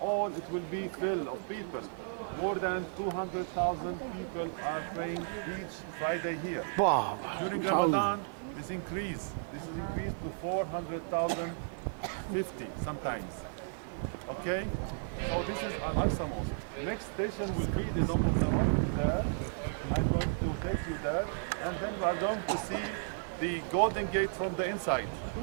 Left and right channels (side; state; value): left; silent; 55 dB below the other